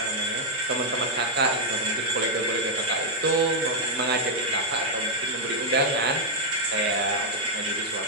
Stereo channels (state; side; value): normal; both; correlation -0.02